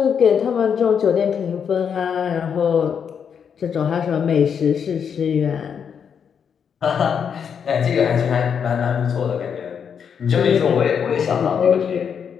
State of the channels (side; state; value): right; quieter; 7.3 dB